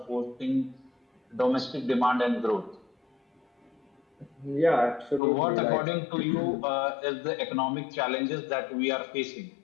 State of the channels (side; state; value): right; drops out; at 5.2 s